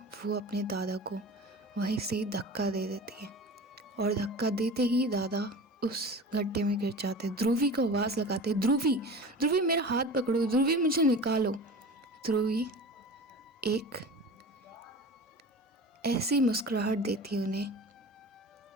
वो अपने दादा को वहीं से धक्का दे देती है, और धक्का देते ही दादा उस गड्ढे में गिर जाते। ध्रुवी को आवाज़ लगाते, ध्रुवी ध्रुवी मेरा हाथ पकड़ो, ध्रुवी मुझे निकालो। ध्रुवी एक ऐसी मुस्कुराहट देती है उन्हें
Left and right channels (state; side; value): normal; both; correlation 0.35